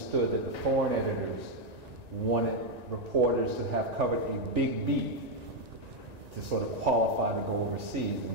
that the foreign editors wanted reporters to have covered a big beat to sort of qualify to go overseas,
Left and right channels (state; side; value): late; left; 1.9 ms